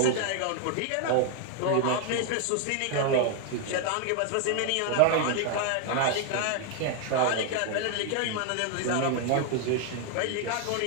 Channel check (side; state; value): both; different; correlation 0.00